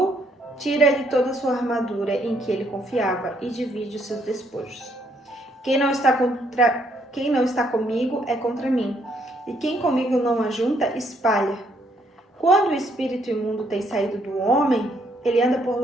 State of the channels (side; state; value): both; normal; correlation 0.70